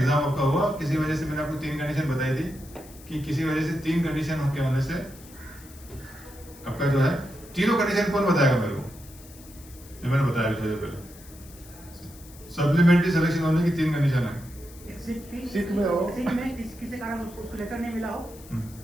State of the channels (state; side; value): noise; left; hiss, 21 dB below the sound